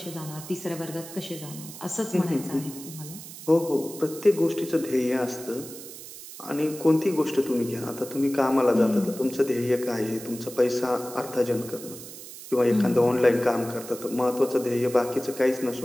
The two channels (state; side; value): noise; right; hiss, 14 dB below the sound